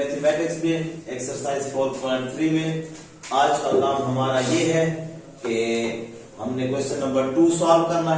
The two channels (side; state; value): both; identical; correlation 1.00